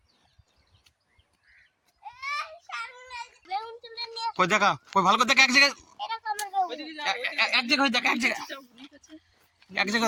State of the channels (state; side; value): identical; both; correlation 1.00